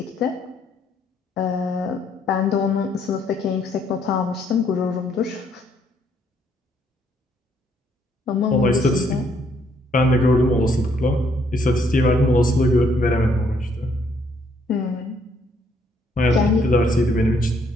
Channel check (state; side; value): normal; both; correlation 0.69